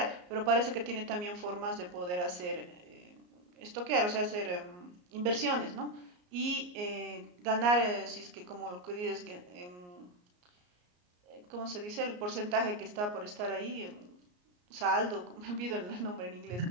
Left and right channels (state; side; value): late; left; 34 ms